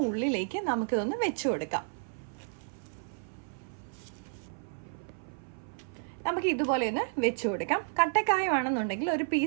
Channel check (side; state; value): left; silent; 57 dB below the other